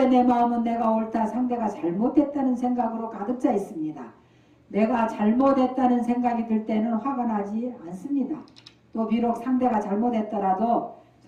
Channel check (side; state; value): both; identical; correlation 1.00